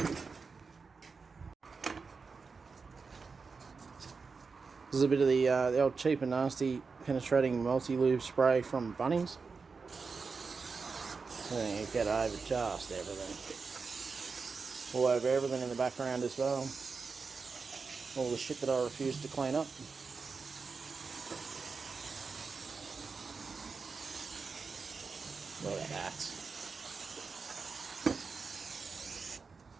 This is a bit of the old cheap and nasty penetrating multi-lube spray from Bunnings. And you get over just everything. All over everything in the background as well. All the shit that I refuse to clean up. Look at that.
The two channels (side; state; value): left; quieter; 4.8 dB